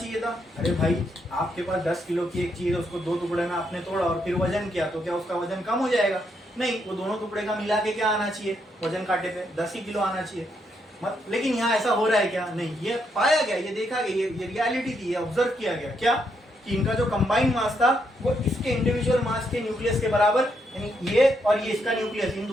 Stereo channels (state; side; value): normal; both; correlation 0.77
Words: था? अरे भाई, आपके पास 10 किलो की एक चीज है, उसको 2 टुकड़े में आपने तोड़ा और फिर वजन किया, तो क्या उसका वजन कम हो जाएगा? नहीं, वो दोनों टुकड़े का मिला के क्या आना चाहिए? वजन काटे पे 10 ही किलो आना चाहिए। लेकिन यहाँ ऐसा हो रहा है क्या? नहीं, ये पाया गया, ये देखा गया, ये रियलिटी थी, ये ऑब्जर्व किया गया। क्या? कि इनका जो कंबाइंड मास था वो इसके इंडिविजुअल मास के न्यूक्लियस के बराबर, यानी ये और ये इसका न्यूक्लियस, इन